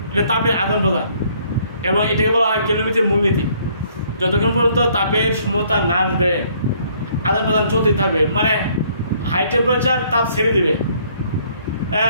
এটা তাপের আদান প্রদান, এবং এটাকে বলা হয় ক্যালোরিমেট্রির মূলনীতি। যতক্ষণ পর্যন্ত তাপের সমতা না আসবে আদান প্রদান চলতে থাকবে। মানে হাই টেম্পারেচার তাপ ছেড়ে দিবে,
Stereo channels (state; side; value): inverted; both; correlation -0.63